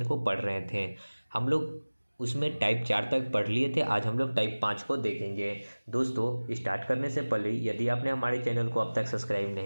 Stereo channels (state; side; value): inverted; both; correlation -1.00